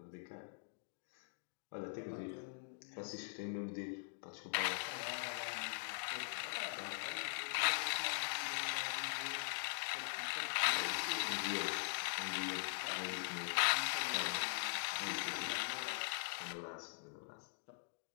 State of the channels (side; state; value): right; silent; digital silence